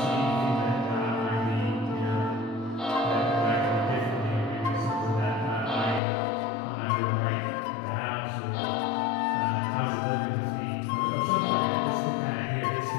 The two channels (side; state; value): right; drops out; at 6.0 s